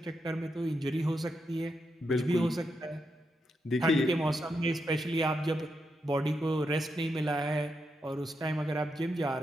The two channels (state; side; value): normal; both; correlation 0.84